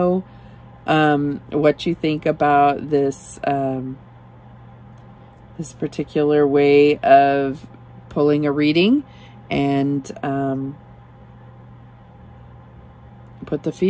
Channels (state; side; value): identical; both; correlation 1.00